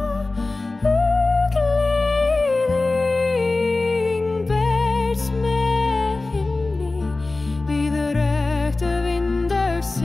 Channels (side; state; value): right; quieter; 3.2 dB